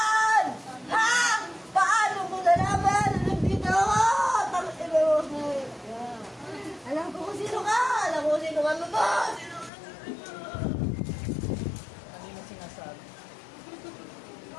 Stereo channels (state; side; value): drops out; right; at 9.7 s